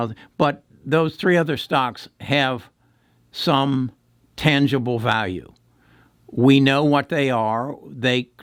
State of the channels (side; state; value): both; identical; correlation 1.00